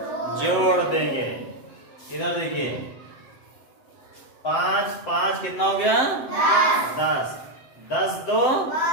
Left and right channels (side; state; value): right; late; 7.8 ms